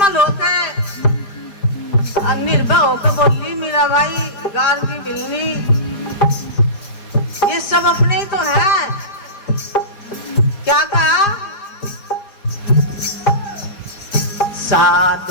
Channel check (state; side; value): late; right; 4.9 ms